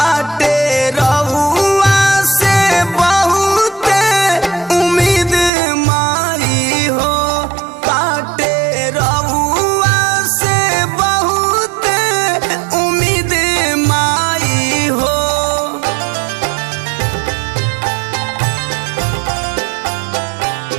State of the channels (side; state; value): left; drops out; at 5.5 s